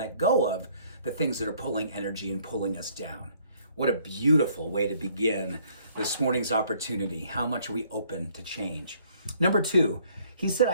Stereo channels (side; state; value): both; inverted; correlation -0.62